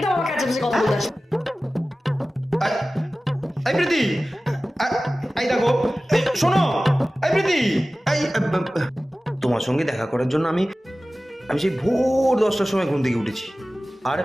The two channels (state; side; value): normal; both; correlation 0.96